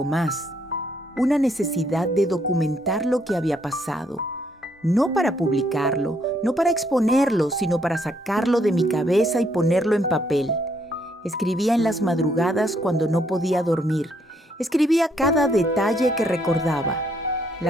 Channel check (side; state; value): both; normal; correlation 0.71